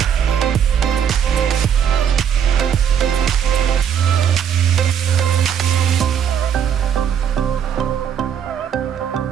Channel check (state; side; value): quieter; left; 8.4 dB